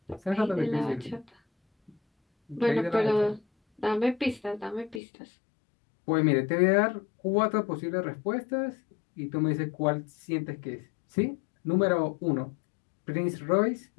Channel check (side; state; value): right; drops out; at 5.0 s